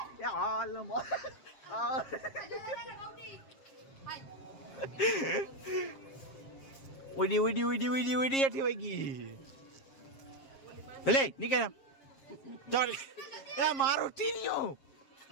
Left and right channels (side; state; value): right; late; 7.4 ms